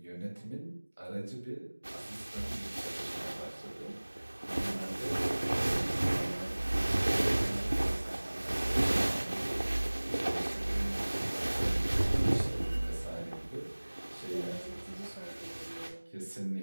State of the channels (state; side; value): inverted; both; correlation -1.00